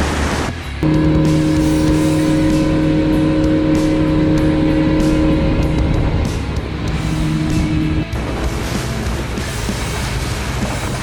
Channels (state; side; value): identical; both; correlation 1.00